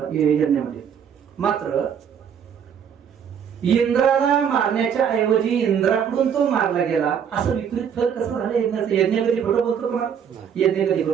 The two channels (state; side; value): quieter; left; 7.9 dB